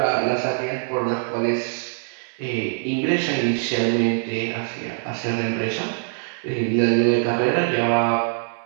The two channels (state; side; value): silent; left; digital silence